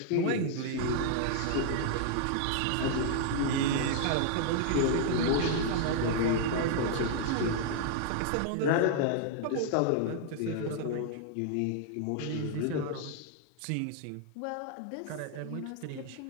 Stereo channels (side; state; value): both; different; correlation -0.01